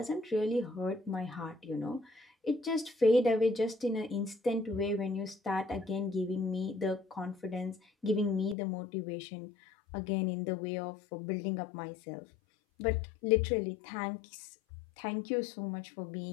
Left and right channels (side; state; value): right; drops out; at 8.6 s